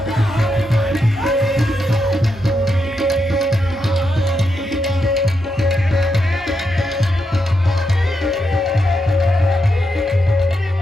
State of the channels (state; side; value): normal; both; correlation 0.83